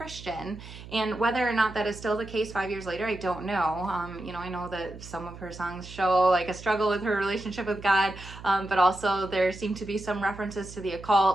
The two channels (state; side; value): noise; right; hum, 15 dB below the sound